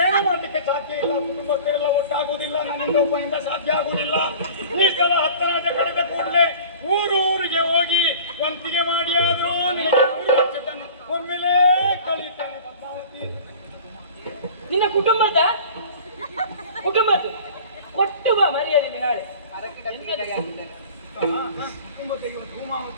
ಏನು ಮಾಡ್ಲಿಕ್ಕೆ ಸಾಧ್ಯ ಇಲ್ಲ. ಕುಟುಂಬಸ್ಥರೆಲ್ಲ ಒಟ್ಟಾಗುವುದಿಲ್ಲ, ನನ್ನಿಂದ ಒಬ್ಬನಿಂದ ಸಾಧ್ಯ ಆಗುವುದಿಲ್ಲ. ಈ ಸಲ 10 ಕಳೆದ ಕೂಡಲೇ ಊರಿಗೆ ಹೋಗಿ ವಂತಿಗೆ ಮಾಡಿ ಆದ್ರೂ ನಿನಗೆ 3 ವರ್ಷ ಒಮ್ಮೆಲೇ ಕಳೀತೇನೆ ಪದ್ಮಾವತಿ. ನಿನ್ನ ಕುಟುಂಬದ್ದು ಕೊಟ್ಟು ಬಾ ಮರ್ಯಾದೆ ನಾಳೆ. ಕುಟುಂಬಕ್ಕೆ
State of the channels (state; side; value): inverted; both; correlation -0.42